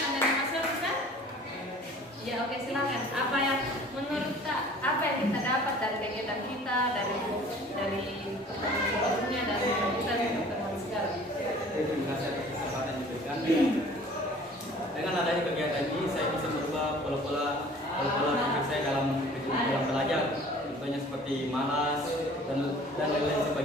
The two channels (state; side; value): normal; both; correlation 0.49